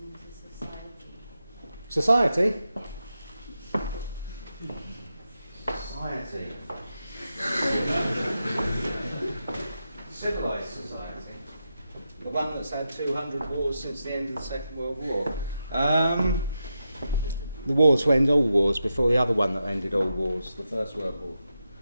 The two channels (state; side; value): inverted; both; correlation -0.87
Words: to society? Society? Society. Civilised society. The one that's had 200 wars since the end of the Second World War. The wars to end all wars before the other one that ended all wars, the First World War.